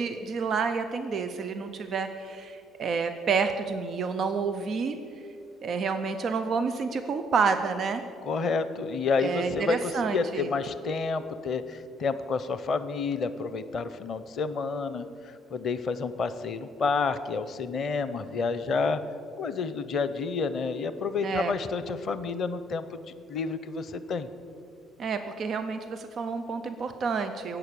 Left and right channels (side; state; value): both; normal; correlation 0.66